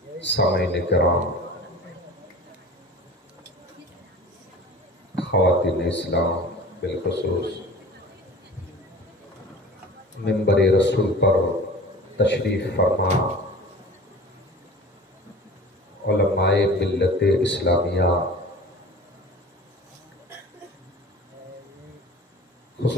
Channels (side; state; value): both; normal; correlation 0.40